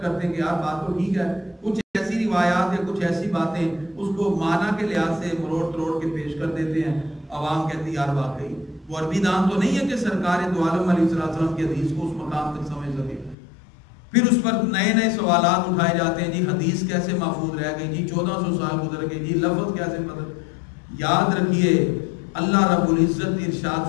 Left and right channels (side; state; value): right; drops out; at 13.4 s